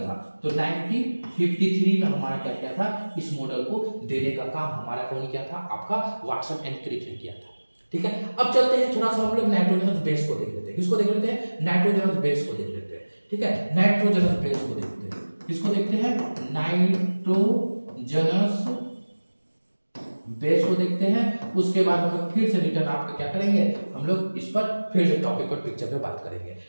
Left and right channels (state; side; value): inverted; both; correlation -1.00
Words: तो 1953 में हमारा क्या किया था, इस मॉडल को देने का काम हमारा कौन किया था, आपका वाटसन एंड क्रिक ने किया था, ठीक है। अब चलते हैं थोड़ा सा हम लोग नाइट्रोजनस बेस को देख लेते हैं। किसको देख लेते हैं, नाइट्रोजनस बेस को देख लेते हैं, ठीक है, नाइट्रोजनस बेस को देखते हैं। किसको देखते हैं, नाइट्रोजनस बेस को देखते हैं। उसके बाद हम लोग फिर से रिटर्न आपका क्या करेंगे, हम लोग इस पर फिर से टॉपिक पर पिक्चर पे बात करेंगे,